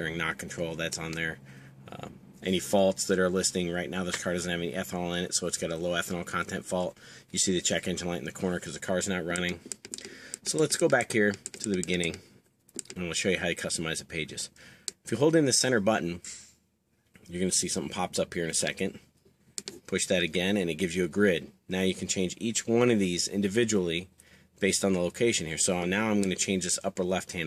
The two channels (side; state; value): both; identical; correlation 1.00